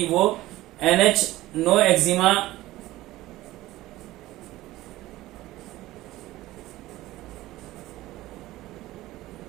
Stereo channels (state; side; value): quieter; left; 16.9 dB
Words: वो NH नो एक्जिमा